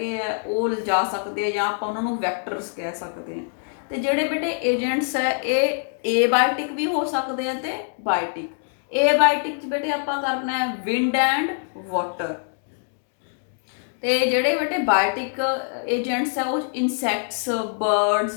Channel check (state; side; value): silent; right; 59 dB below the other